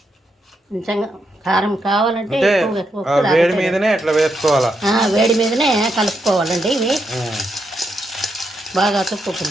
కొంచెం కారం కావాలంటే వేడి మీదనే అట్లా వేసుకోవాలా, వేడి మీదనే కలుపుకోవాలండి. ఇవి బాగా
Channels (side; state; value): both; normal; correlation 0.81